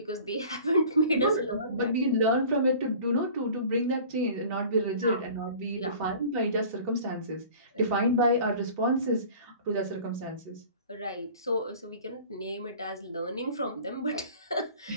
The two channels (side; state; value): both; inverted; correlation -0.44